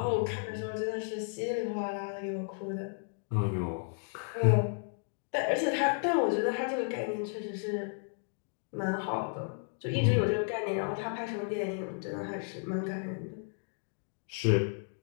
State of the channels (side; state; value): right; silent; 56 dB below the other